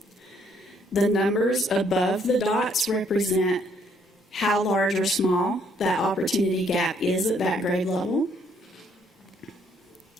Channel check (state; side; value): normal; both; correlation 0.67